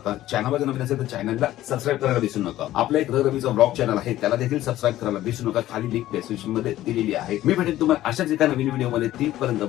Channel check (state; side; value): quieter; right; 14.4 dB